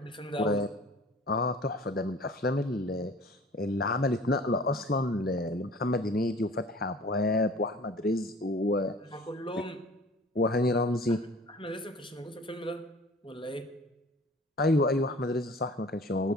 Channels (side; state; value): both; normal; correlation 0.46